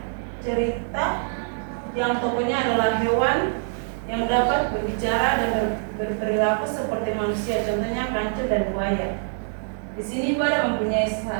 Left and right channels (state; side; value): silent; left; digital silence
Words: yang tokohnya adalah hewan yang dapat berbicara dan berperilaku seperti manusia. Contohnya kancil dan buaya. Di sini Ibu ada mempunyai